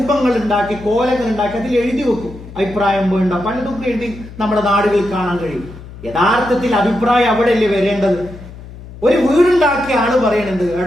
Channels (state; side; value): noise; left; hum, 16 dB below the sound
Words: ഉണ്ടാക്കി, കോലങ്ങൾ ഉണ്ടാക്കി അതിൽ എഴുതി വെക്കും. അഭിപ്രായം വേണ്ട പലതും എഴുതി നമ്മുടെ നാടുകളിൽ കാണാൻ കഴിയും. യഥാർത്ഥത്തിൽ അഭിപ്രായം അവിടെയല്ലേ വരേണ്ടത്? ഒരു വീടുണ്ടാക്കിയ ആള് പറയണത്,